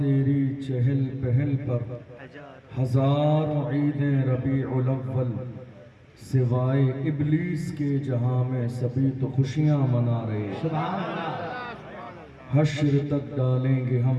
چہل پہل پر ہزاروں عیدیں ربیع الاول، سوائے ابلیس کے جہاں میں سبھی تو خوشیاں منا رہے۔ سبحان اللہ۔ حشر تک ڈالیں گے ہم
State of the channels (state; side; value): identical; both; correlation 1.00